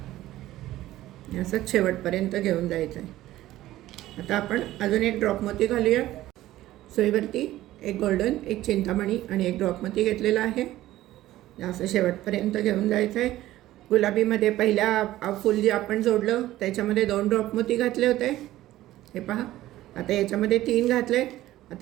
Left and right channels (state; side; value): quieter; left; 15.1 dB